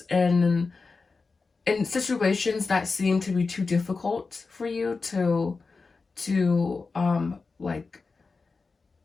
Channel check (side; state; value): right; quieter; 4.3 dB